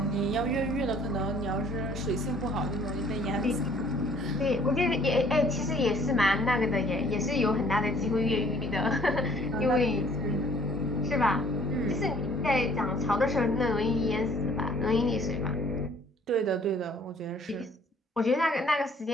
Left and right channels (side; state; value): both; normal; correlation 0.58